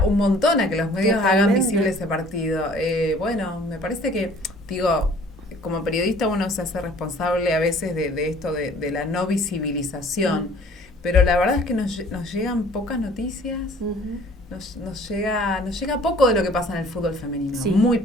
un montón a que los medios hagan visible ese partido. Bueno, me parece que, digo, como periodista uno se hace responsable a veces de esto de la no visibilización, pero la verdad es que nos llegan pocas noticias, nos llega poco de lo que pasa en el fútbol femenino, muy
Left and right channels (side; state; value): both; normal; correlation 0.53